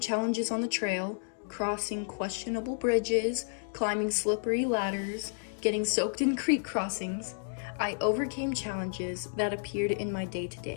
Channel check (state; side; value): silent; right; digital silence